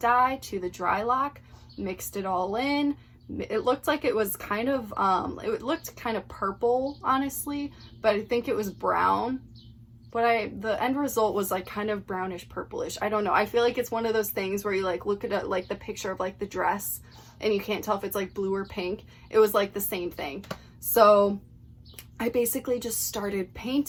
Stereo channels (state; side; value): identical; both; correlation 1.00